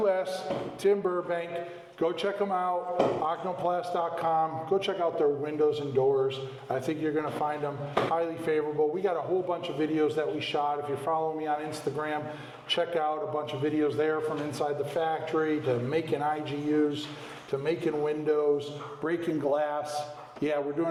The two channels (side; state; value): both; identical; correlation 1.00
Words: Tim Burbank. Go check them out, oknoplast.com. Go check out their windows and doors. I think you're going to find them highly favorable. We got a whole bunch of videos that we shot. If you're following me on Instagram, check out a bunch of videos there from inside the factory to making IGUs, to making windows, breaking glass. Yeah, we're